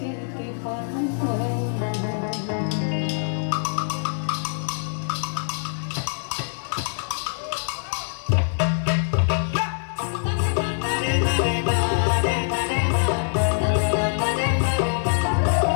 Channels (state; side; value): silent; right; digital silence